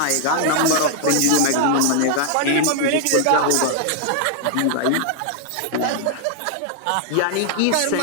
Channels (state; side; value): different; both; correlation 0.00